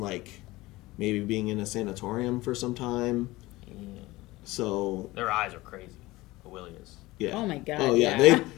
maybe being in a sanatorium for some time. Yeah. So... Their eyes are crazy. Aurelia's. Yeah. Oh, my God. Oh, yeah.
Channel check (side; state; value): right; quieter; 19.6 dB